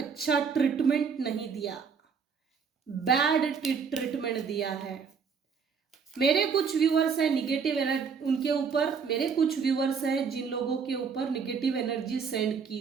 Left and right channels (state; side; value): quieter; left; 6.1 dB